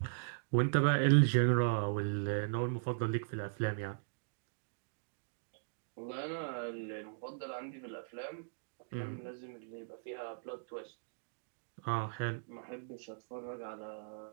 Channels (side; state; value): left; silent; digital silence